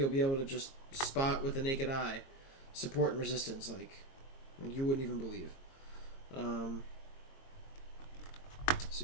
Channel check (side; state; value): right; late; 22 ms